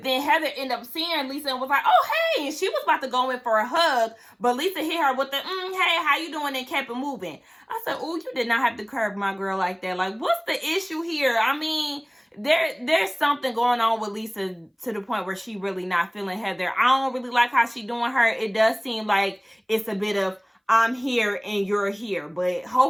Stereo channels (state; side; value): identical; both; correlation 1.00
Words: then Heather ended up seeing Lisa and was like, oh, hey. And she was about to go in for a hug, but Lisa hit her with the, hey, how you doing? And kept it moving. I said, oh, you did not have to curb my girl like that. Like, what's the issue here? I mean, there's something going on with Lisa to the point where she really not feeling Heather. I don't really like how she doing her. It does seem like it's a bit of I'm here and you're here, but